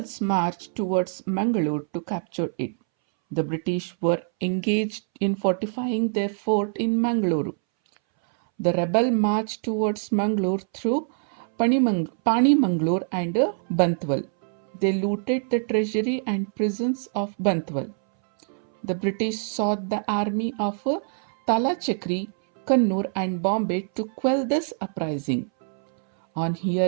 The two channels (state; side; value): silent; left; 62 dB below the other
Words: marched towards Mangalore to capture it. The British were engaged in fortifying their fort in Mangalore. The rebel marched towards Mangalore through Panimangalore and Bantwal. They looted the treasury and prisons of Bantwal. The British sought the army of Talachakri, Kannur and Bombay to quell this uprising. On